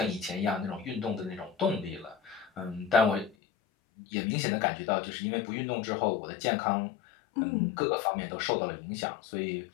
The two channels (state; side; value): drops out; right; at 3.4 s